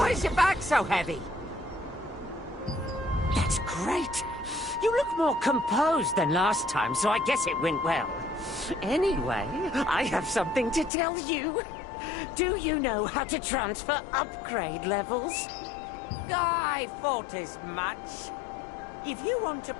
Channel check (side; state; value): right; drops out; at 10.9 s